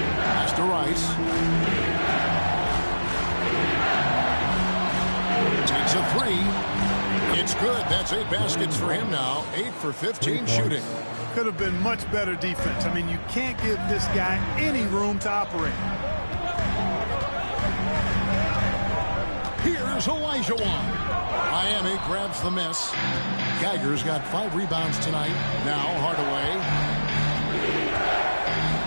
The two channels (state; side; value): inverted; both; correlation -1.00